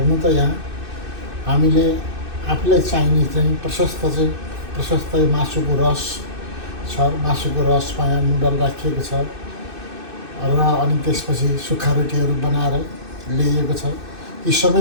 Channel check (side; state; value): left; late; 2.6 ms